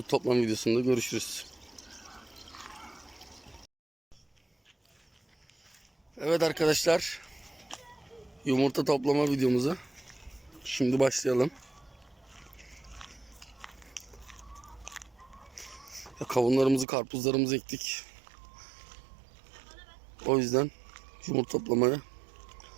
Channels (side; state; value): left; drops out; at 16.9 s